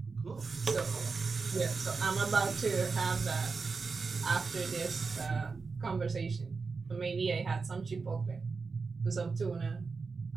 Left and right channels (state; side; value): quieter; left; 4.6 dB